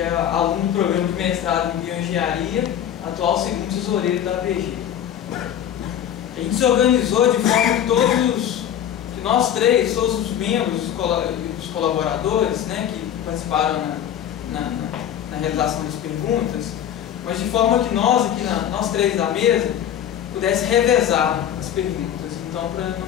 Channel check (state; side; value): quieter; right; 10.1 dB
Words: é aluno do programa de mestrado em Bioengenharia, atual segundo tesoureiro da PG. A gente se organizou de forma que nós três, todos os membros, os colaboradores, né, que participaram na realização das perguntas, mas de forma que nós três da mesa, pudesse revezar as perguntas. Então, para não